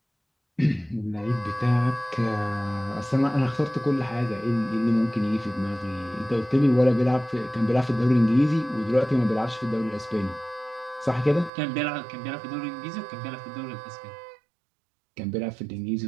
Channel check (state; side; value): drops out; left; at 11.5 s